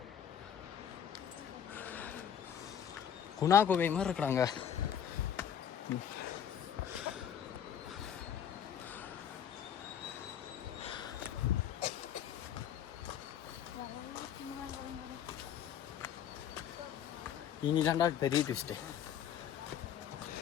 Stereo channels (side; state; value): right; quieter; 9.1 dB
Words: குணா கோவை மாதிரி இருக்கிறாங்க. இனிதான்டா பெரிய ட்விஸ்ட்டு.